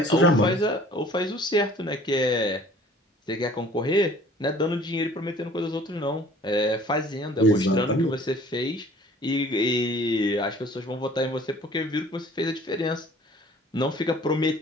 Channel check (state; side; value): normal; both; correlation 0.51